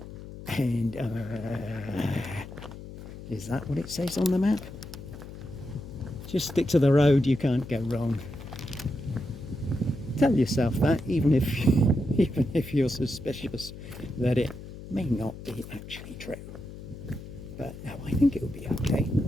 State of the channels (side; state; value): left; noise; hum, 13 dB below the sound